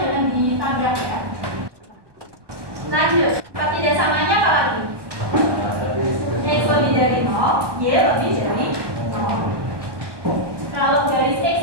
jangan ditambah ya. Lanjut, pertidaksamanya apa lagi? X lebih dari 0, Y lebih dari 0. Kalau garis X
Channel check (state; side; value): late; left; 1.2 ms